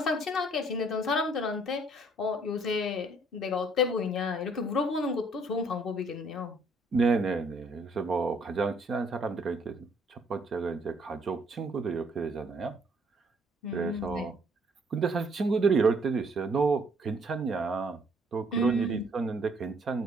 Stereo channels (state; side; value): normal; both; correlation 0.64